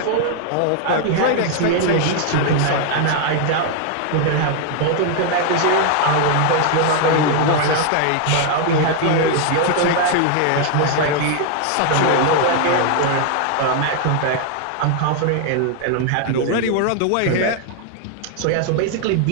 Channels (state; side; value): different; both; correlation 0.00